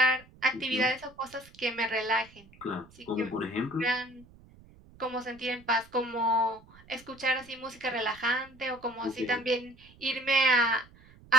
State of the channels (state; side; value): noise; right; rumble, 24 dB below the sound